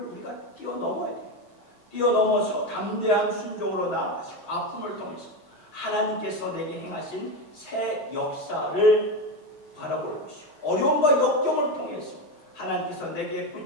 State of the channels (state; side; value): late; right; 6.1 ms